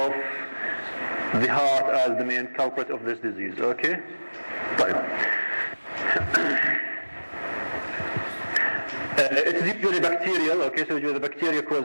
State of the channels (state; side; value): inverted; both; correlation -1.00